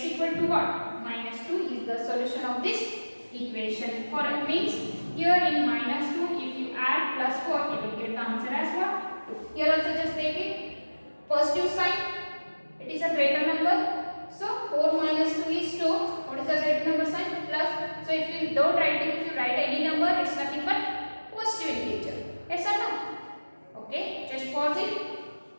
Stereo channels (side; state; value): both; inverted; correlation -1.00